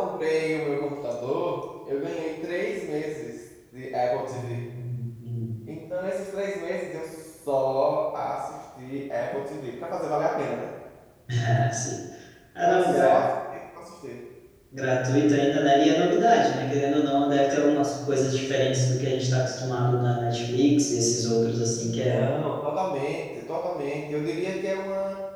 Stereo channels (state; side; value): identical; both; correlation 1.00